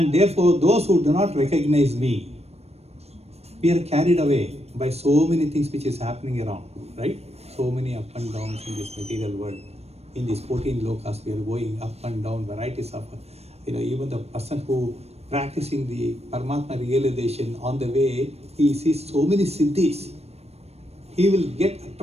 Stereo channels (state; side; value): late; left; 0.30 ms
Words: therefore, those who do not recognize me, we are carried away by so many things which is happening around, right? So many up and downs in this material world. In these 14 lokas, we are going up and down, varieties of, even the person who practicing the Paramatma realization on the way, he sees so many siddhis. He will get